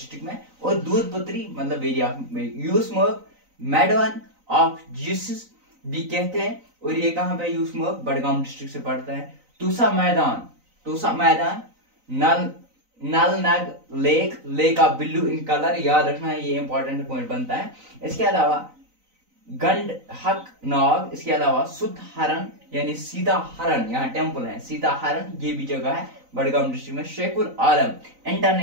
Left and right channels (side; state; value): left; late; 3.9 ms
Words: में। और दूध पत्री मतलब very of Yusmarg meadow of Jesus भी कहते हैं, और ये कहाँ पे यूसमर्ग बड़गाम डिस्ट्रिक्ट से पड़ता है। तूसा मैदान नल नग lake of Billu in colour, याद रखना है, ये इंपॉर्टेंट पॉइंट बनता है। इसके अलावा गंड हक नाग, इसके अलावा सुध हरण यानी सीता हरण, यहाँ टेम्पल है सीता हरण, ये भी जगह है बड़गाम डिस्ट्रिक्ट में। शेखुल आलम